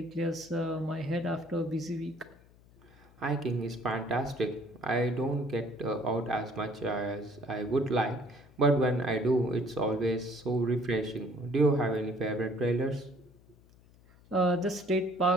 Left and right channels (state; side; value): noise; left; hum, 26 dB below the sound